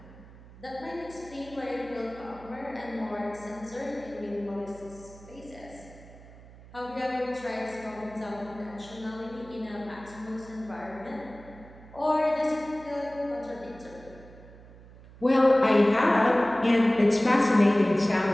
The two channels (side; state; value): right; noise; hum, 20 dB below the sound